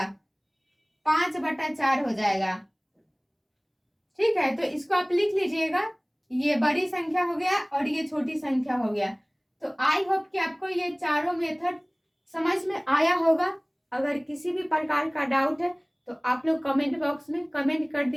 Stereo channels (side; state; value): both; identical; correlation 1.00